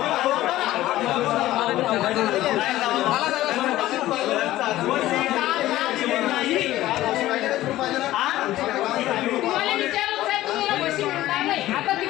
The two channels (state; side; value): quieter; right; 15.3 dB